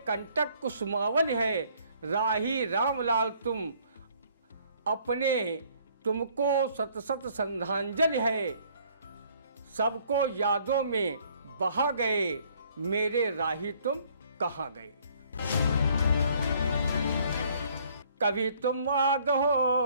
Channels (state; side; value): inverted; both; correlation -0.61